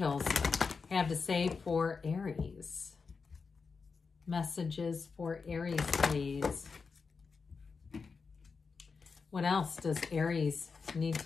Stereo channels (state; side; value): quieter; right; 5.0 dB